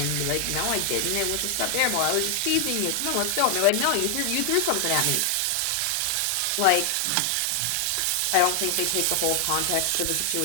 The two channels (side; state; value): both; different; correlation 0.00